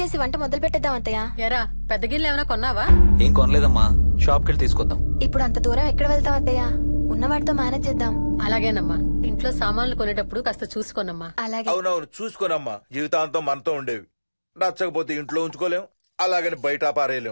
వంట మొదలు పెట్టేద్దాం అత్తయ్య. ఎరా, పెద్ద గిన్నెలు ఏమైనా కొన్నావా? ఏం కొనలేదమ్మా, షాప్ కెళ్ళి తీసుకొద్దాం. ఇప్పుడు అంత దూరం ఎక్కడ వెళ్తాం అత్తయ్య? ఉన్న వాటితో మేనేజ్ చేద్దాం. అలాగేనమ్మా, ఇంట్లో సామాన్లు కొనేటప్పుడు కాస్త చూసుకోనమ్మా. అలాగే. అవునవును, చూసుకోనమ్మా. జీవితాంతం మనతో ఉండేవి. నచ్చకపోతే ఇంట్లో ఉంచుకోలేం, అలాగని బయట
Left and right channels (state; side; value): inverted; both; correlation -1.00